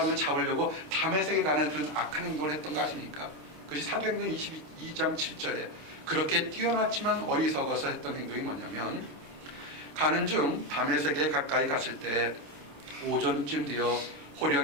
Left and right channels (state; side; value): late; left; 27 ms